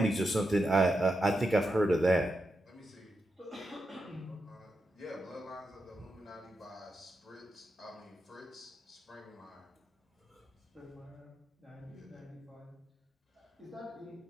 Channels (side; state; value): both; normal; correlation 0.87